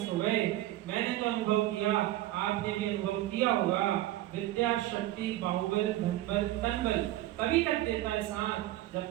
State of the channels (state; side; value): quieter; left; 15.1 dB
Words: हो गए। मैंने तो अनुभव किया, आपने भी अनुभव किया होगा। विद्या, शक्ति, बाहुबल, धनबल, तनबल तभी तक देता है साथ